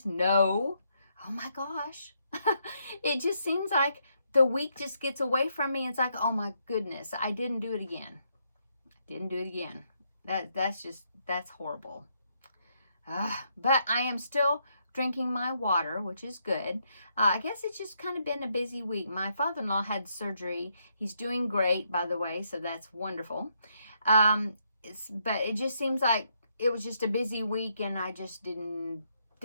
No. Oh my gosh. It just seems like the week just gets away from me. It's like, oh my goodness, I didn't do it again. That's horrible. But I am still drinking my water, which is good. I guess it's just kind of been a busy week. My father-in-law had surgery. He's doing great, by the way, so that's wonderful. But it just seems like it was just a busy week, and I just didn't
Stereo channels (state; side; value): inverted; both; correlation -0.76